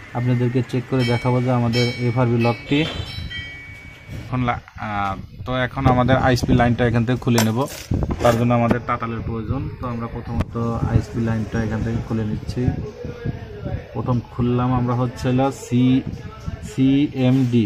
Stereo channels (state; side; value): identical; both; correlation 1.00